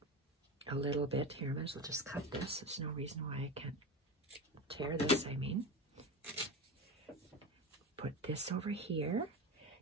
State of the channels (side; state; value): both; normal; correlation 0.23